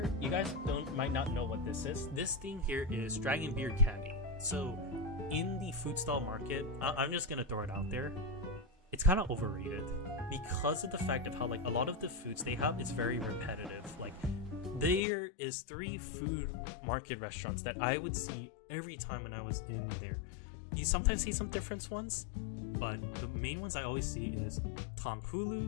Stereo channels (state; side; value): drops out; right; at 15.0 s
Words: you guys might not know what this is. This thing here is dragon beer candy. So in the food stall market, I'm just gonna throw it out there, it's kind of overrated because of the fact of how like a lot of the foods they have is very repetitive. Like there is 3 food market restaurants that I would see every time when I was in there. You sometimes see some different ones, but the main ones I always see is